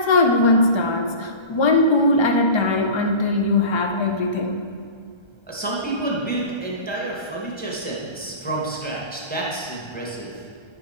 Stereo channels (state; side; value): late; right; 1.3 ms